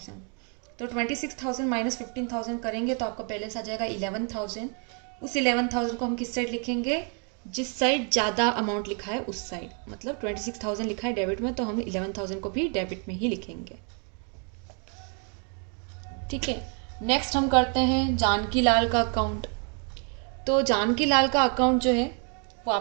तो 26,000 माइनस 15,000 करेंगे तो आपका बैलेंस आ जाएगा 11,000। उस 11,000 को हम किस साइड लिखेंगे, जिस साइड ज़्यादा अमाउंट लिखा है उस साइड। मतलब 26,000 लिखा है डेबिट में, तो हम 11,000 को भी डेबिट में ही लिखेंगे। ठीक है, नेक्स्ट हम करते हैं जानकी लाल का अकाउंट। तो जानकी लाल का अकाउंट जो है वो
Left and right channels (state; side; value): quieter; left; 39.8 dB